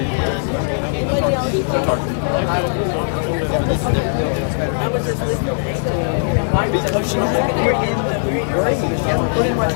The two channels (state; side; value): silent; right; digital silence